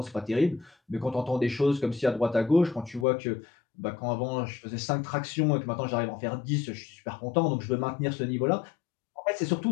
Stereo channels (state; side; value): drops out; right; at 3.1 s